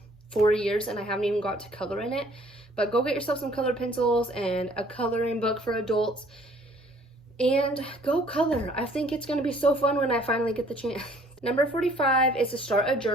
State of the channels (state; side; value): normal; both; correlation 0.58